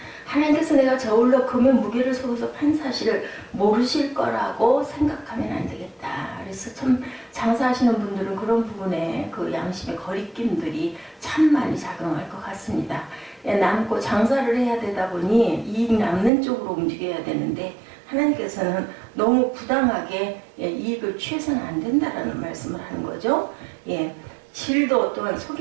하나님께서 내가 저울로 금의 무게를 속여서 판 사실을 모르실 거라고 생각하면 안 되겠다. 그래서 참 장사하시는 분들은 그런 부분에 그 양심의 거리낌들이 참 많이 작용할 것 같습니다. 남고 장사를 해야 되다 보니 이익 남는 쪽으로 움직여야 되는데 하나님께서는 너무 부당하게 이익을 취해서는 안 된다라는 말씀을 하는 거죠. 질도 또한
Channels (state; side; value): drops out; left; at 16.3 s